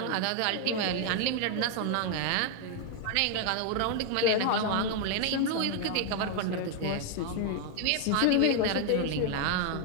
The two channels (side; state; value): both; different; correlation 0.00